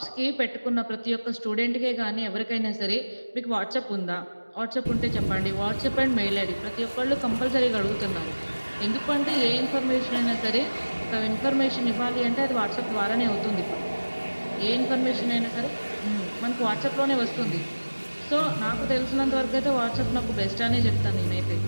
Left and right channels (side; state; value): both; inverted; correlation -1.00